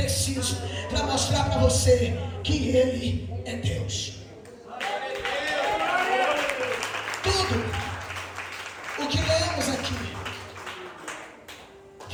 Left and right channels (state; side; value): identical; both; correlation 1.00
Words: para mostrar para você que Ele é Deus. Tudo o que lemos aqui